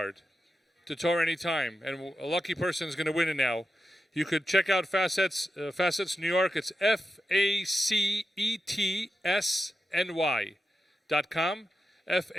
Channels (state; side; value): normal; both; correlation 0.89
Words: to TorahAnytime, and a lucky person is going to win it now. You could check out Facets New York. It's FACETSNY.com.